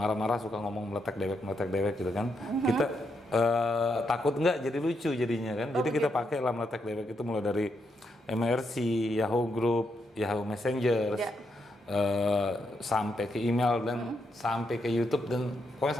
suka ngomong meletek dewek gitu kan. Kita takut nggak jadi lucu jadinya kan. Jadi kita pakai lah meletek dewek itu mulai dari MRC, Yahoo Group, Yahoo Messenger, Ya. sampai ke email dan sampai ke YouTube dan pokoknya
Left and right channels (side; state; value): both; normal; correlation 0.80